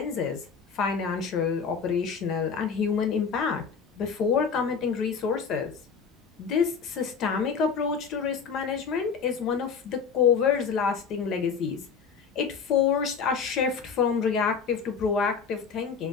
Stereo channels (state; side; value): quieter; right; 6.0 dB